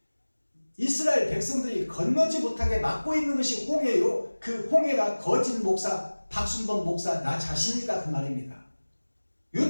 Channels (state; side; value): inverted; both; correlation -1.00